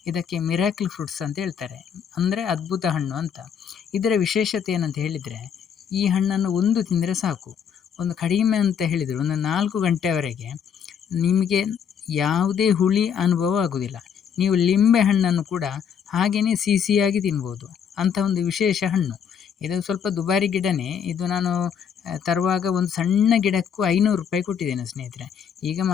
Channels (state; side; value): quieter; right; 7.7 dB